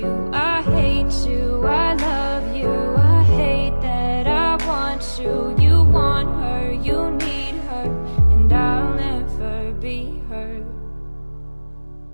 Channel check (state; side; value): inverted; both; correlation -1.00